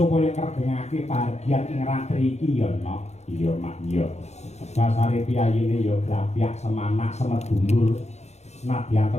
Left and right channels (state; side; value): late; right; 0.32 ms